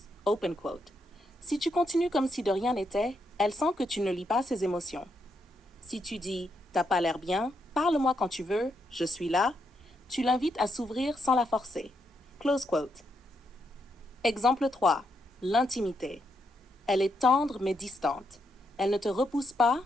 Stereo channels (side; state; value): both; normal; correlation 0.79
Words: Open quote. Si tu continues comme si de rien n'était, elle sent que tu ne lis pas ses émotions. Si tu dis « t'as pas l'air bien, parle-moi quand tu veux, je suis là », tu l'invites à s'ouvrir sans la forcer. Close quote. Exemple 3. L'intimité. Elle est tendre mais distante. Elle ne te repousse pas,